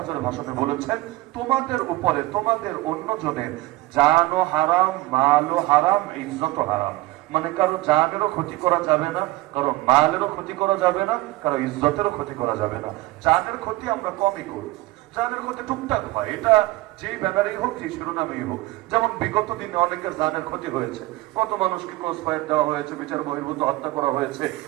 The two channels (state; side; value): quieter; left; 19.2 dB